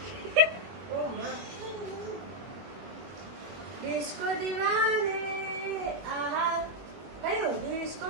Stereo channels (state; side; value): late; left; 21 ms